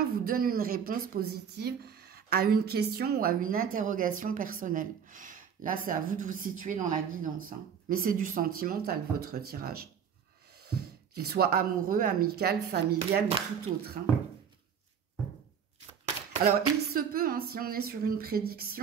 vous donne une réponse positive à une question ou à une interrogation personnelle. Là, c'est à vous de vous situer dans la guidance. Hein. Mais c'est du sentimental, votre tirage. Qu'il soit amoureux, amical, familial ou tout autre. Hein. Alors, il se peut, hein, si on est sur une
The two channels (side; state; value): left; quieter; 7.6 dB